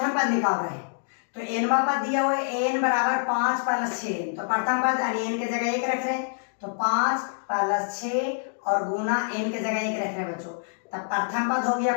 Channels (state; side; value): silent; right; digital silence